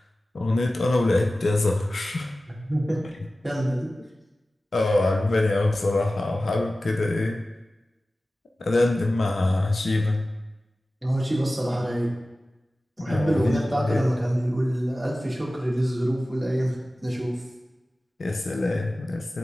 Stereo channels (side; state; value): both; normal; correlation 0.96